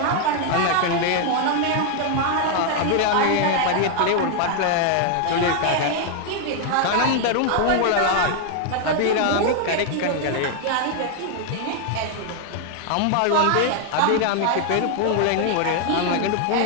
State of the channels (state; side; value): different; both; correlation 0.00